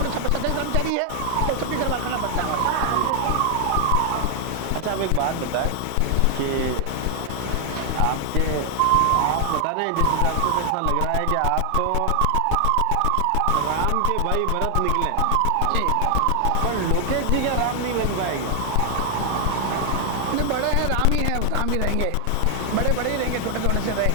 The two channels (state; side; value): different; both; correlation 0.00